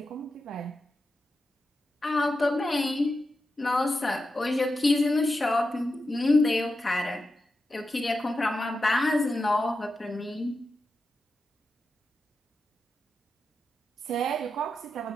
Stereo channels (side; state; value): both; normal; correlation 0.90